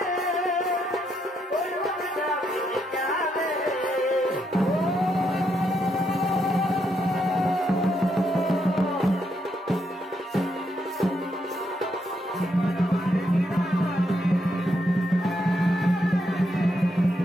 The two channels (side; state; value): both; normal; correlation 0.78